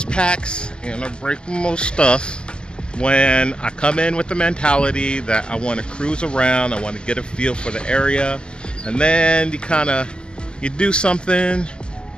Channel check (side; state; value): right; late; 0.048 ms